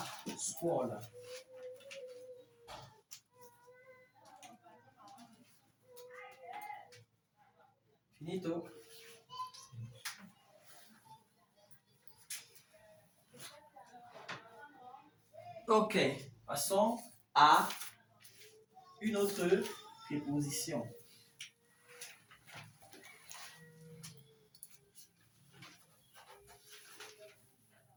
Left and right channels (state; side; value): identical; both; correlation 1.00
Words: scuola. Finito. Ok, passons à une autre préposition.